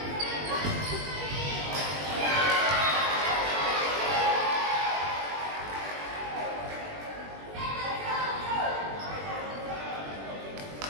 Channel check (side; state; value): left; late; 21 ms